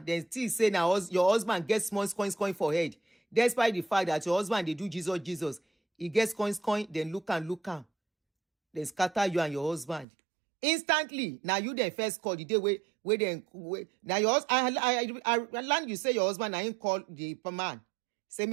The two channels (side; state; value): left; drops out; at 10.1 s